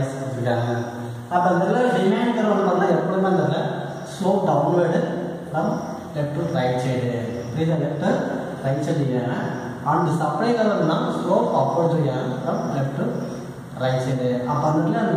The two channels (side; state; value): both; identical; correlation 1.00